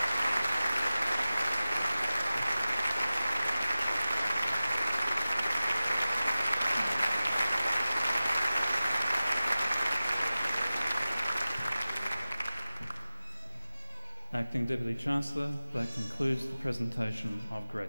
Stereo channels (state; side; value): inverted; both; correlation -0.95